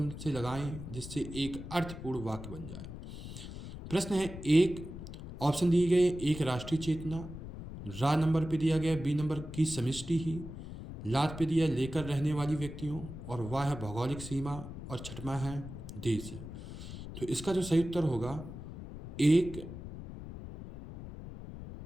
से लगाएं जिससे एक अर्थपूर्ण वाक्य बन जाए। प्रश्न है 1, ऑप्शन दिए गए, 1 राष्ट्रीय चेतना, रा नंबर पे दिया गया बी नंबर की समष्टि ही, लात पे दिया लेकर रहने वाली व्यक्तियों, और वाह है भौगोलिक सीमा, और छठवां है देश है। तो इसका जो सही उत्तर होगा 1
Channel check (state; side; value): noise; left; rumble, 11 dB below the sound